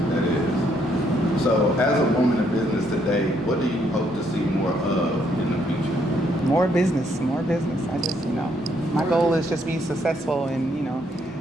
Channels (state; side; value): normal; both; correlation 0.71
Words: That is. So as a woman in business today, what do you hope to see more of in the future? More business. I just, my goal is just be successful and,